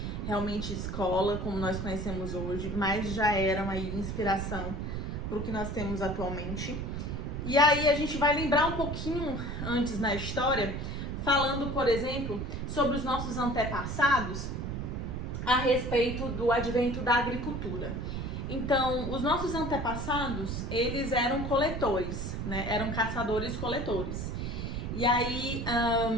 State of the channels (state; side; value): noise; right; rumble, 4 dB below the sound